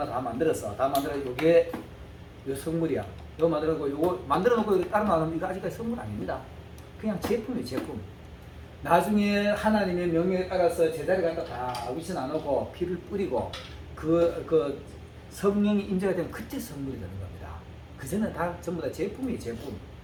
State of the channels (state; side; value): identical; both; correlation 1.00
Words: 다 만들었어. 다 만들어 이게 요 성물이야. 이거 만들어놓고 이거 만들어놓고 이거 따로 나오면 이거 아직까지 성물 아닙니다. 그냥 제품이에요. 제품. 나중에 하나님의 명령에 따라서 제자리 갖다 다 위치 나누고 피를 뿌리고 그 성령이 임재가 되면 그때 성물이 되는 겁니다. 그전에는 다 전부 다 제품이에요. 제품.